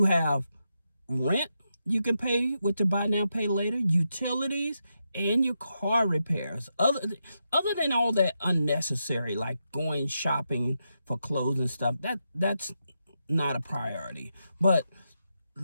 have rent you can pay with the buy now, pay later, utilities, and your car repairs. Other than all that unnecessary, like going shopping for clothes and stuff, that's not a priority. But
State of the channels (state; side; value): inverted; both; correlation -0.85